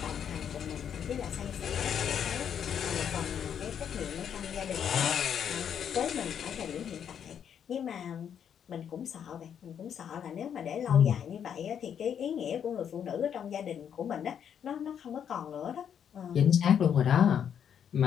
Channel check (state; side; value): quieter; right; 8.4 dB